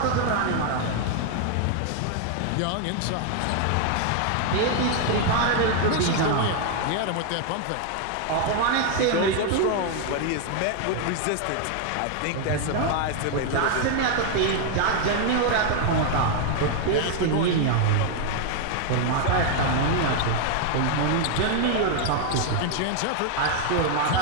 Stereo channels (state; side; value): different; both; correlation 0.00